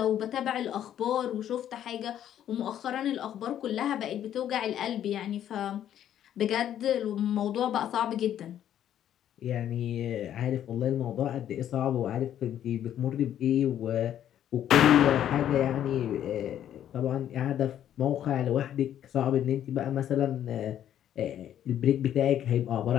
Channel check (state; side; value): quieter; right; 10.7 dB